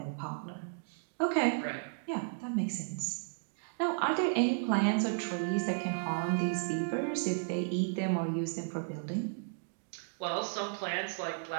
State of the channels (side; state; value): left; silent; digital silence